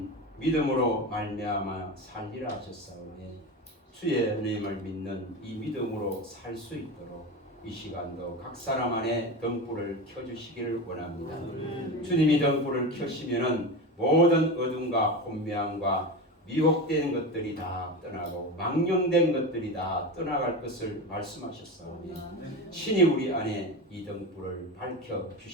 믿음으로 말미암아 살리라 하셨사오니 주의 은혜임을 믿는 이 믿음으로 살 수 있도록 이 시간도 각 사람 안에 등불을 켜주시기를 원합니다. 주님이 등불을 켜시면은 모든 어둠과 혼미함과 미혹된 것들이 다 떠나고 망령된 것들이 다 떠나갈 것을 말씀하셨사오니 친히 우리 안에 이 등불을 밝혀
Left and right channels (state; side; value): normal; both; correlation 0.23